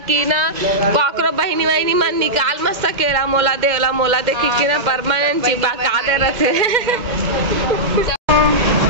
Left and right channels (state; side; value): late; left; 2.1 ms